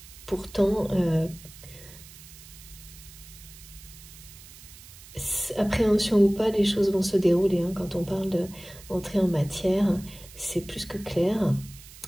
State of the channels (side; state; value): right; noise; hiss, 19 dB below the sound